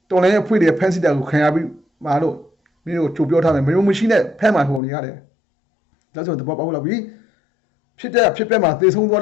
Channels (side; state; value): right; drops out; at 4.8 s